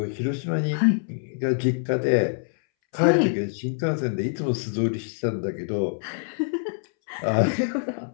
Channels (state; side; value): silent; right; 62 dB below the other